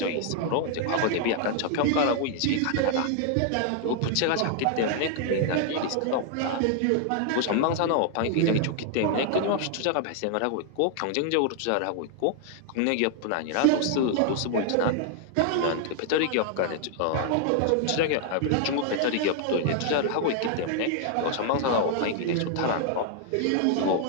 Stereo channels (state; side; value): different; both; correlation 0.00